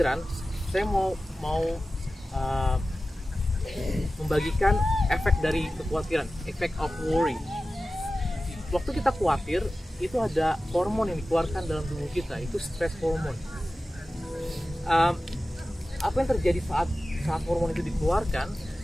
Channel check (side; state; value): both; normal; correlation 0.95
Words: saya mau membagikan efek dari kekhawatiran, effect of worry. Waktu kita khawatir, itu ada hormon yang dikeluarkan dalam tubuh kita, itu stress hormone. Apa yang terjadi saat hormon itu dikeluarkan,